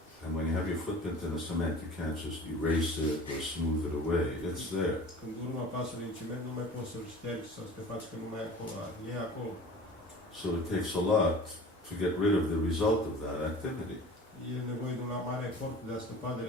And when you have your footprint in the cement, you can't just erase it or smooth it away. It's there. Când urma pasului în ciment, nu mai poți să-l ștergi sau să te faci că nu mai e acolo, e acolo. So it takes a lot to get rid of the result of that activity. E nevoie de un mare efort de a scăpa de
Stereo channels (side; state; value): both; normal; correlation 0.42